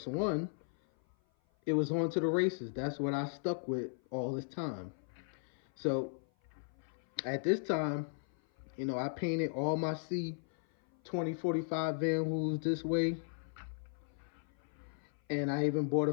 one, it was on to the races. That's what I stuck with all this time. So at this time, you know, I painted all my C2045 Vanhools this way. And I even bought a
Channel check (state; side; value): silent; right; 54 dB below the other